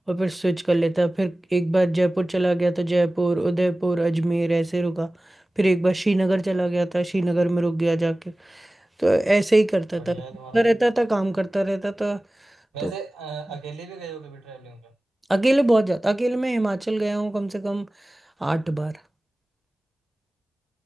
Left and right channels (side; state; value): both; normal; correlation 0.97